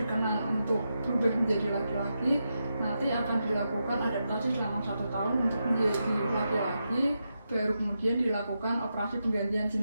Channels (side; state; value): both; inverted; correlation -0.86